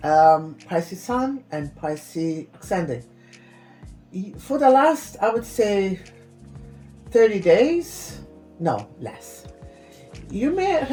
Pisces Sun and Pisces Ascendant. For the last, I would say, 30 days, no, less. You may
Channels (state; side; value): identical; both; correlation 1.00